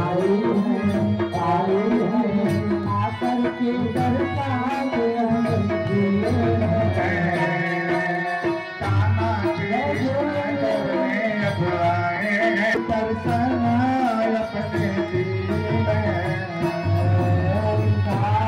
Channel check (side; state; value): both; identical; correlation 1.00